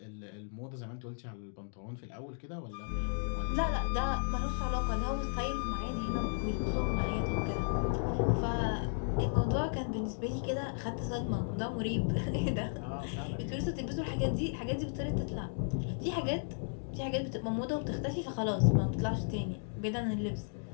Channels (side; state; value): right; silent; digital silence